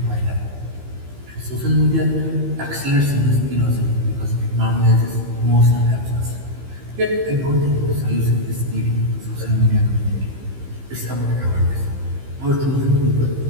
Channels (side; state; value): left; late; 15 ms